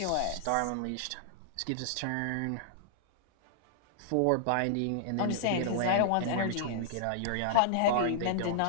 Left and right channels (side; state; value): both; different; correlation -0.01